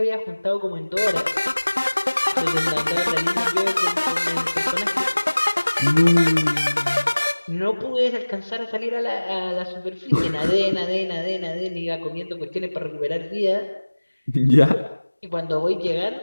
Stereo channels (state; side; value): inverted; both; correlation -1.00